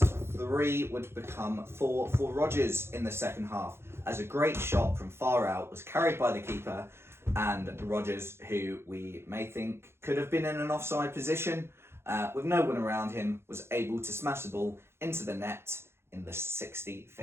3 would become 4 for Rodgers in the second half, as a great shot from far out was carried by the keeper, and Rodgers, who we may think could have been in an offside position, with no one around him, was able to smash the ball into the net in the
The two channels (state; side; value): late; left; 0.12 ms